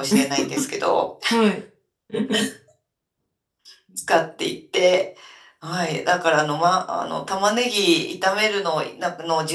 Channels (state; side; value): identical; both; correlation 1.00